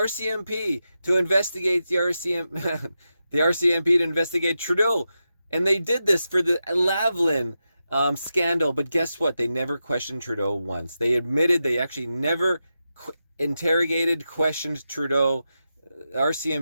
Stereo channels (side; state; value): both; inverted; correlation -0.89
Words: to investigate the RCMP to investigate Trudeau. And they did this for the Lavalin scandal. But guess what? They never questioned Trudeau once. They admitted they actually never questioned Trudeau.